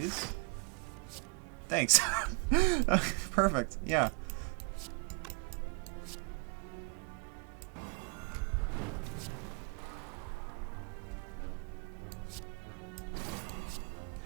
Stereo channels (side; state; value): left; quieter; 32.7 dB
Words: Thanks. Perfect, yeah.